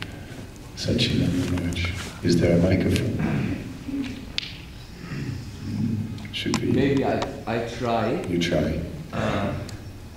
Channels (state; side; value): identical; both; correlation 1.00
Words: Sachin and Manoj, is there a microphone? Should we? Maybe I try. You try.